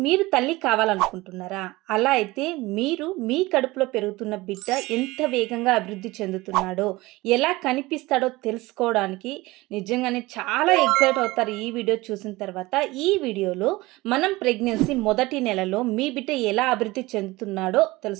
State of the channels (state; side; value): quieter; left; 20.5 dB